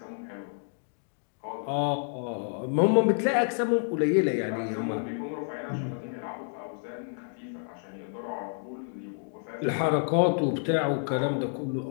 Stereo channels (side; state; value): right; silent; digital silence